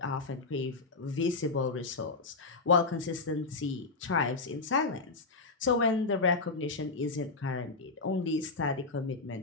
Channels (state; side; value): quieter; right; 3.8 dB